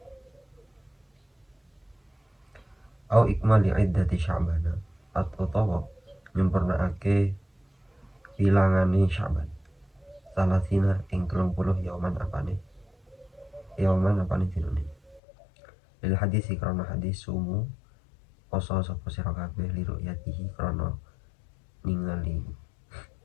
au ikmali iddati sya'bana utawa nyempurnaake bilangane Sya'ban salasina ing 30 yauman apane dinune lil hadisi karena hadis sumu poso sapa sira kabeh li ru'yatihi krana ningali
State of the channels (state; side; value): drops out; right; at 15.2 s